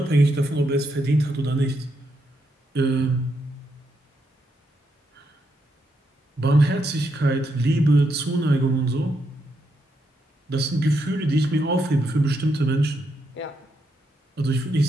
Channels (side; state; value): both; normal; correlation 0.80